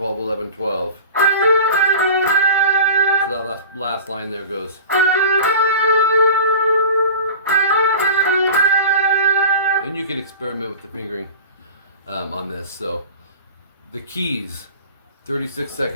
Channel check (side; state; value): both; inverted; correlation -0.36